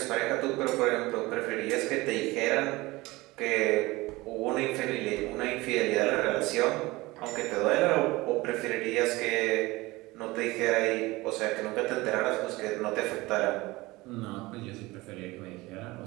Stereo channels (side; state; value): left; quieter; 21.0 dB